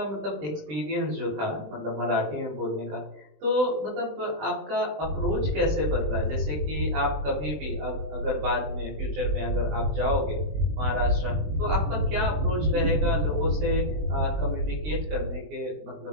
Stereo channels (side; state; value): left; late; 20 ms